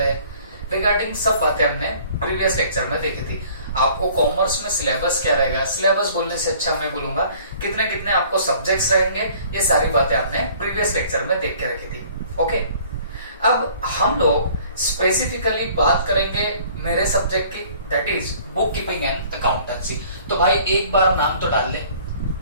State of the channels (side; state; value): both; inverted; correlation -0.53